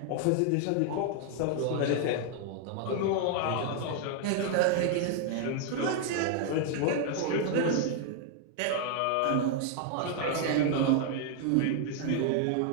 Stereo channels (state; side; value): different; both; correlation 0.00